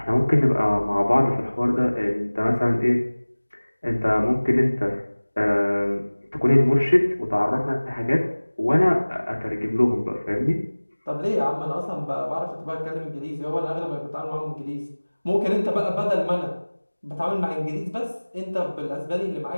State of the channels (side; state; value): both; inverted; correlation -1.00